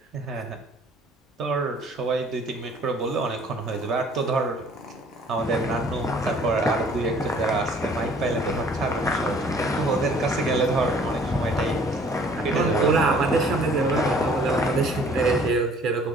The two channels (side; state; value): both; normal; correlation 0.55